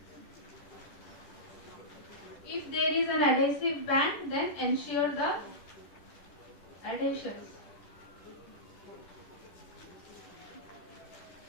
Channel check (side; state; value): right; late; 10 ms